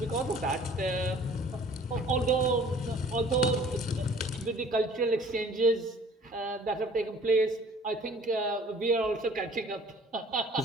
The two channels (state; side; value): normal; both; correlation 0.51